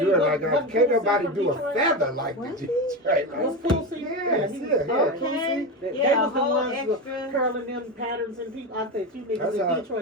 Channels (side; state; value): both; normal; correlation 0.18